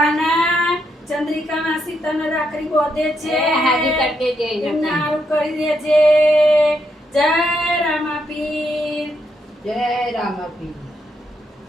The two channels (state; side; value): normal; both; correlation 0.79